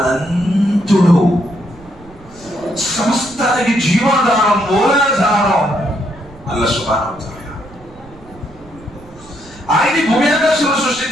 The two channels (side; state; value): right; noise; rumble, 22 dB below the sound